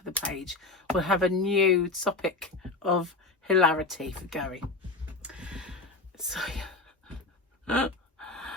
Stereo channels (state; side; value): quieter; right; 3.4 dB